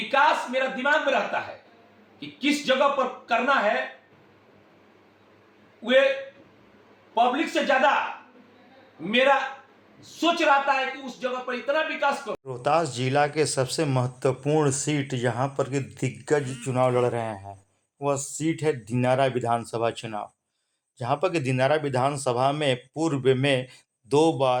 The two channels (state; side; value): identical; both; correlation 1.00